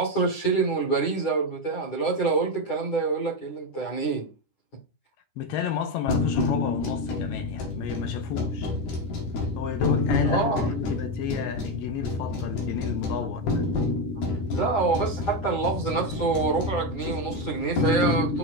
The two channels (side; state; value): right; late; 9.9 ms